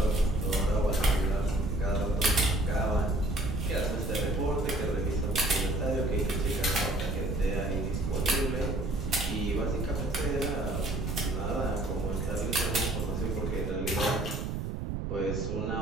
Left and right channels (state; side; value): noise; right; rumble, 3 dB below the sound